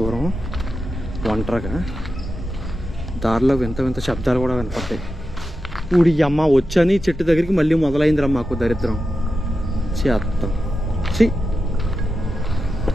ఒంటరిగా. దారిలో వింత శబ్దాలు కూడా వినపడతాయి. ఊడి అమ్మ వచ్చని చెట్టు దగ్గరికి మళ్ళీ మొదలైందిరా మాకు దరిద్రం. చేత్తాం చి.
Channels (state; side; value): normal; both; correlation 0.90